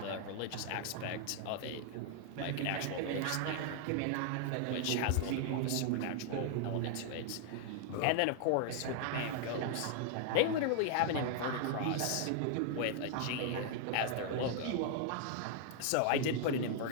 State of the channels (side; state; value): both; different; correlation 0.00